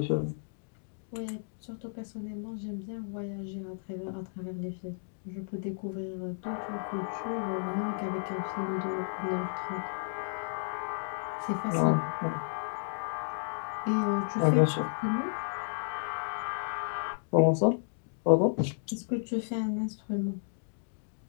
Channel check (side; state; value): right; silent; digital silence